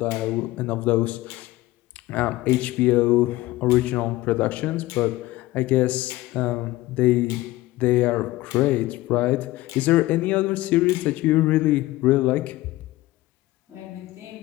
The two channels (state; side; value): quieter; right; 17.9 dB